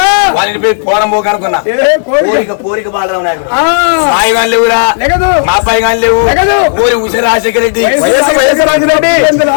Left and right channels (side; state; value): right; silent; digital silence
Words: వాళ్ళని పోయి పోరంబోకు అనుకున్నా. కోరిక బాలరాం నాయకుడు. మాయి గారు లేవురా, మా అబ్బాయి గారు లేవు. ఊరి ఉష రాజశేఖర రెడ్డి.